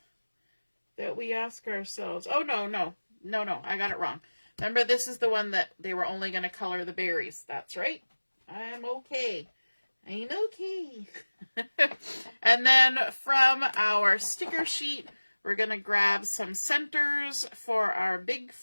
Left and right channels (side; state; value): both; inverted; correlation -1.00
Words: that we ask ourselves. Oh, no. I got it wrong. Remember, this is the one that they were only going to color the berries. That's right. I'm okay. I'm okay. And then from our sticker sheet, we're going to grab some centers for our big